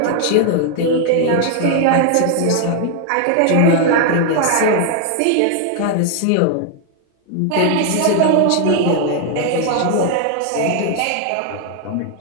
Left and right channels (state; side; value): different; both; correlation 0.00